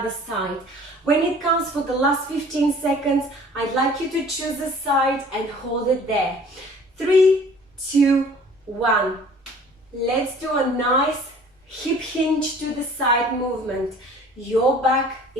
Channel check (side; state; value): both; normal; correlation 0.50